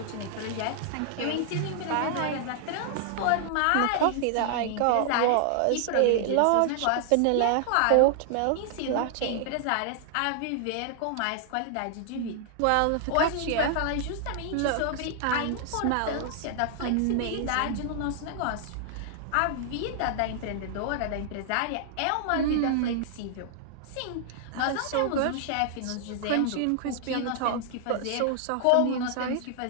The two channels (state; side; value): different; both; correlation -0.01